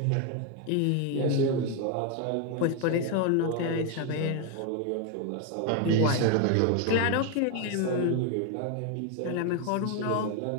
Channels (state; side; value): different; both; correlation 0.01